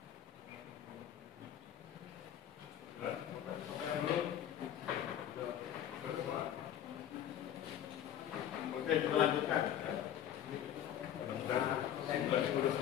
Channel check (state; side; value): quieter; right; 10.4 dB